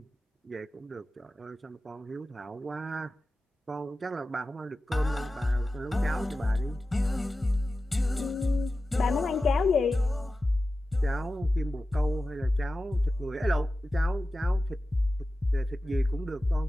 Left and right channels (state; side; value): normal; both; correlation 0.94